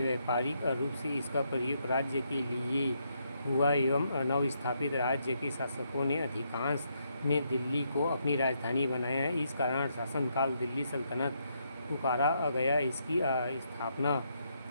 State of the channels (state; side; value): inverted; both; correlation -0.77